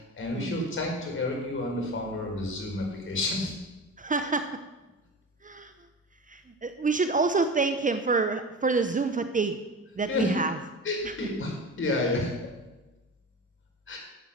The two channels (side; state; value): both; normal; correlation 0.31